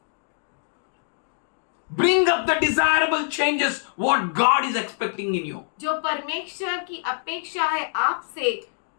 Bring up the desirable changes what God is expecting in you. जो परमेश्वर की अपेक्षा है आपसे,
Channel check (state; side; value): silent; right; digital silence